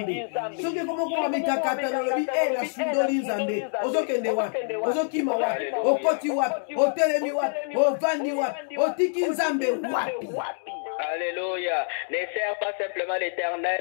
soki komokoma mikakata nalobi nasundoli nzambe ozokende wapi ozokima wapi okoti wapi otelemi wapi ovandi wapi otiki nzambe wapi. Alléluia. Ne sers pas simplement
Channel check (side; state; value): right; silent; digital silence